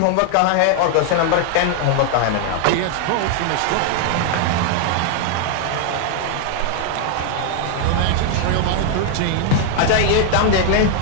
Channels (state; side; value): different; both; correlation 0.00